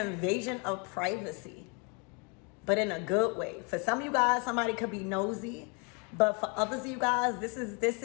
of privacy, but in a good way. For some of you guys, somebody could be nosy, but for others of you guys, this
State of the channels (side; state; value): right; quieter; 34.0 dB